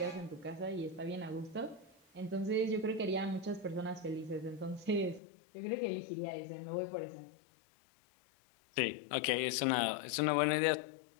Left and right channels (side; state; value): right; drops out; at 5.2 s